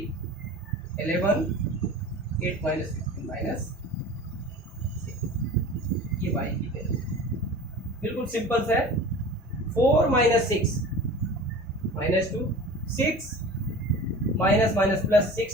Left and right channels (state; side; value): normal; both; correlation 0.38